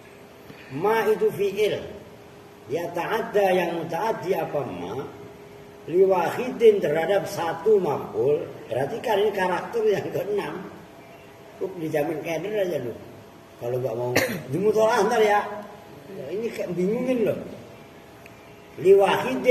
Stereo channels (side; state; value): both; identical; correlation 1.00